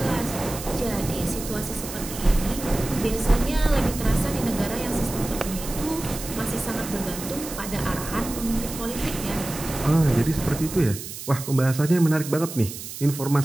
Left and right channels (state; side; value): noise; right; hiss, 10 dB below the sound